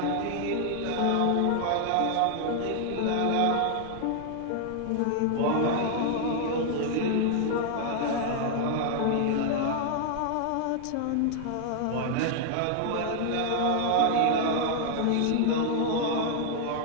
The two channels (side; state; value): both; different; correlation 0.00